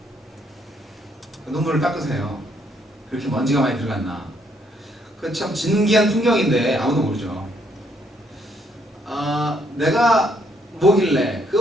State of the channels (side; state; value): both; normal; correlation 0.71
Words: 눈물을 닦으세요. 그렇게 먼지가 많이 들어갔나. 그 참 진기한 풍경인데 아무도 모르죠. 내가 뭐길래